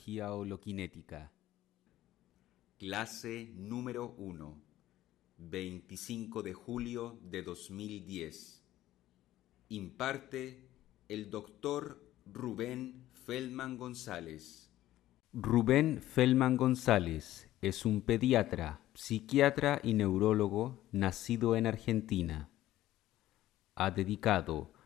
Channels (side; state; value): right; quieter; 14.3 dB